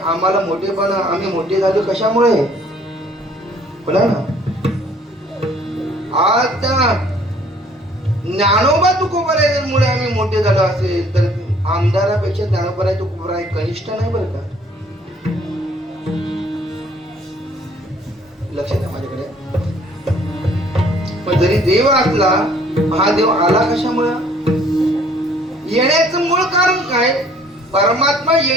मोठेपणा, आम्ही मोठे झालो कशामुळे बोला ना. आज त्या ज्ञानोबा तुकोबारामुळे आम्ही मोठे झालो असेल तर आमदारापेक्षा ज्ञानोबा तुकोबारा कनिष्ठ नाही बरं का. लक्षात आहे माझ्याकडे. पण जरी देव असला, हा देव आला कशामुळे, येण्याचं मूळ कारण काय, परमात्मा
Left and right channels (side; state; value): both; normal; correlation 0.58